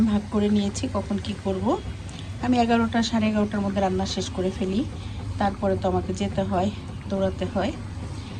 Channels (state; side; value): identical; both; correlation 1.00